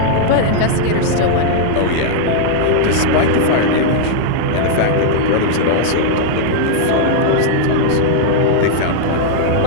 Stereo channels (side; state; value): both; different; correlation -0.02